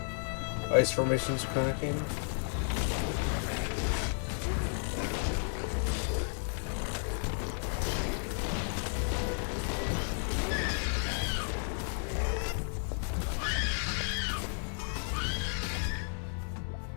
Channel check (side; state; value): right; silent; 56 dB below the other